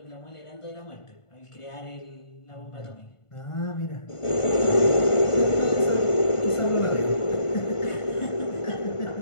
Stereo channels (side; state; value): right; late; 1.5 ms